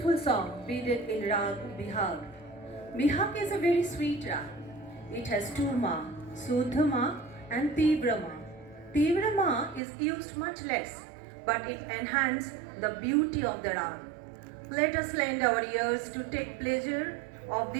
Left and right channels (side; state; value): left; drops out; at 9.8 s